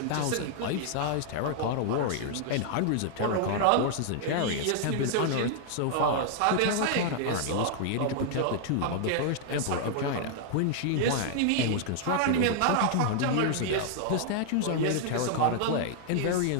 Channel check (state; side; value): different; both; correlation 0.00